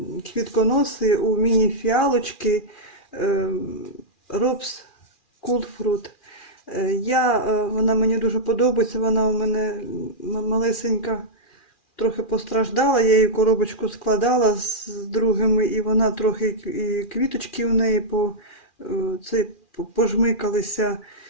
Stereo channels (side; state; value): right; late; 2.4 ms